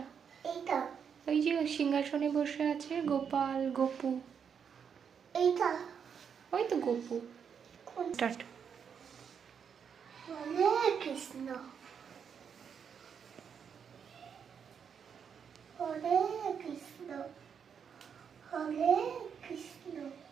এইটা ওই যে সিংহাসনে বসে আছে গোপাল গোপু। এইটা ওই তো গোপু। কোন? স্টার্ট। হরে কৃষ্ণ হরে কৃষ্ণ হরে কৃষ্ণ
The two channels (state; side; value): quieter; left; 7.2 dB